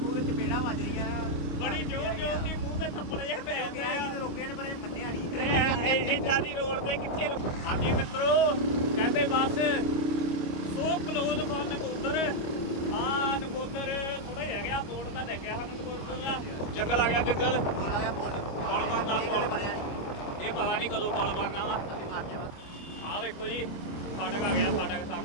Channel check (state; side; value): late; right; 25 ms